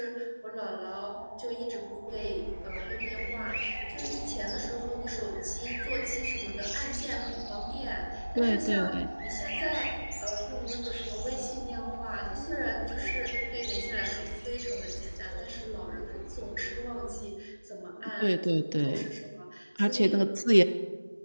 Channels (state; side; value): inverted; both; correlation -1.00